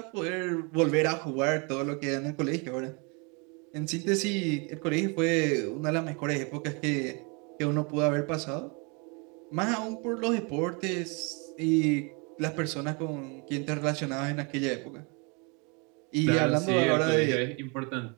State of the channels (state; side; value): quieter; left; 32.2 dB